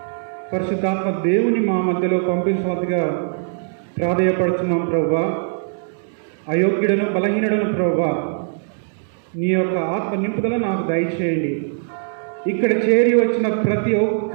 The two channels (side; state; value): left; silent; 65 dB below the other